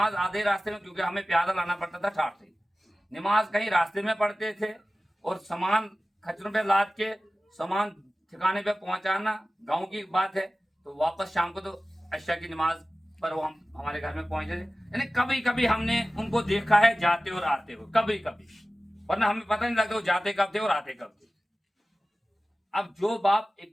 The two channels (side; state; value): both; normal; correlation 0.96